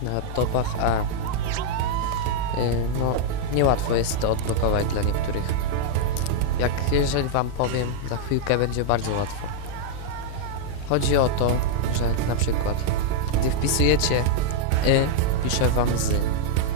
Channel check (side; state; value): both; different; correlation -0.01